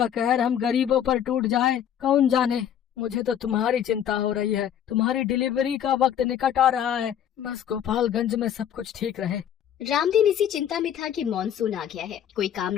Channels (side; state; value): right; quieter; 9.7 dB